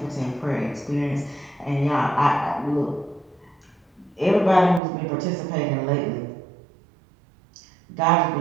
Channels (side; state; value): left; drops out; at 4.8 s